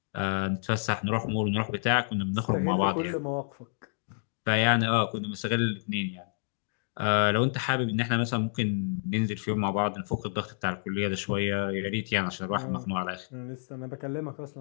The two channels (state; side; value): silent; right; digital silence